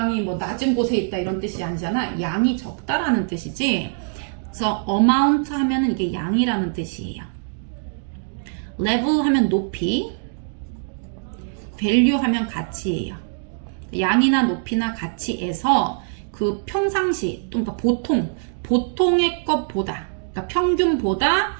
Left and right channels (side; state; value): left; silent; 64 dB below the other